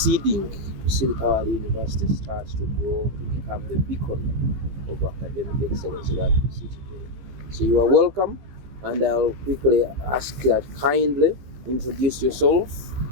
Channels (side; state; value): left; late; 15 ms